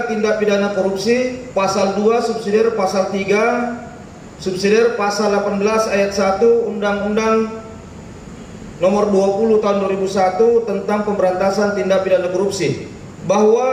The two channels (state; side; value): identical; both; correlation 1.00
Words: tindak pidana korupsi pasal 2 subsidiar pasal 3 subsidiar pasal 18 ayat 1 Undang-Undang Nomor 20 Tahun 2001 tentang pemberantasan tindak pidana korupsi,